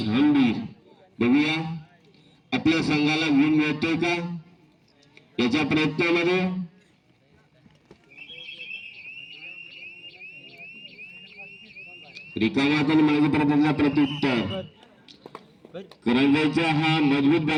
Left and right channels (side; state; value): both; identical; correlation 1.00